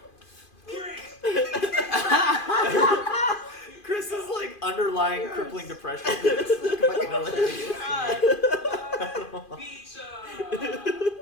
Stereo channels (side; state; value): right; late; 2.5 ms